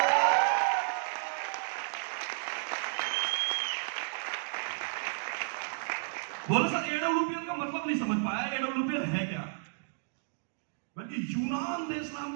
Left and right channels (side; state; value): left; silent; digital silence